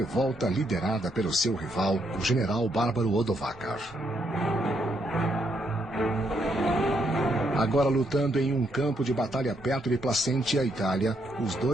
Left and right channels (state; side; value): normal; both; correlation 0.75